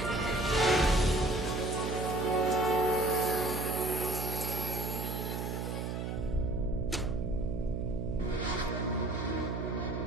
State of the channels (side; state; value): right; noise; hum, 3 dB below the sound